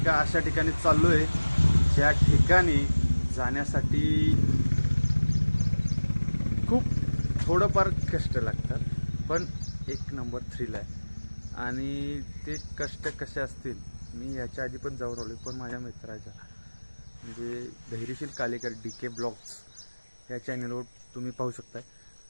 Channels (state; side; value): inverted; both; correlation -1.00